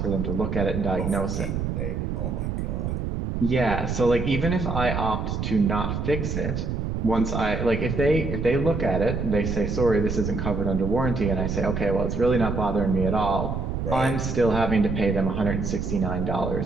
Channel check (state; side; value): noise; right; rumble, 2 dB below the sound